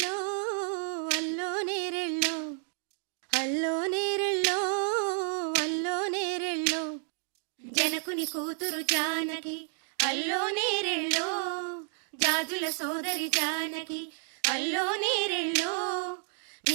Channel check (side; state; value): left; silent; 57 dB below the other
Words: అల్లో నేరెళ్ళో అల్లో నేరెళ్ళో అల్లో నేరెళ్ళో జనకుని కూతురు జానకి అల్లో నేరెళ్ళో జాజుల సోదరి జానకి అల్లో నేరెళ్ళో